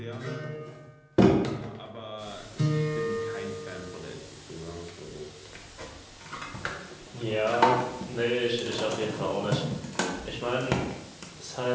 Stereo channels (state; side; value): identical; both; correlation 1.00